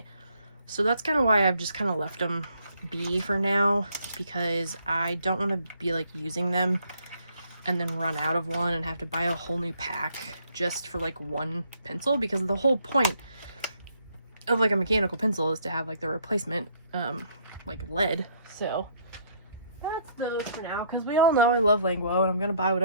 So that's kind of why I've just kind of left them be for now, because I don't want to be like using them and then run out of one and have to buy a whole new pack just for like one pencil, because the whole point of like a mechanical pencil is to have like the replacement like lead. So that's those for now, because we all know I love Langwo, and I'm gonna buy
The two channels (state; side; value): inverted; both; correlation -0.67